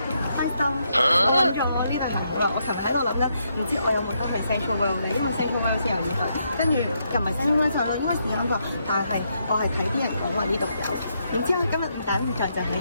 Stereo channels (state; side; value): inverted; both; correlation -0.78